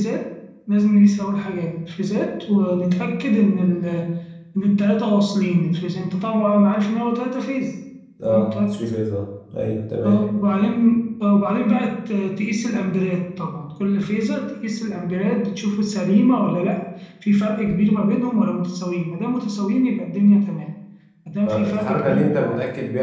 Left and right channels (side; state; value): both; identical; correlation 1.00